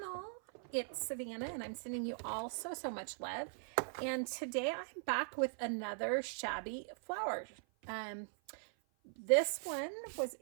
It's Savannah and I'm sending you all so much love. And today I'm back with another shabby flower. This one was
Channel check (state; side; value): silent; left; 51 dB below the other